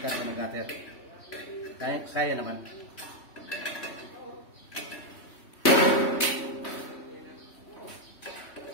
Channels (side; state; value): right; late; 3.1 ms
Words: nagater, kaya naman.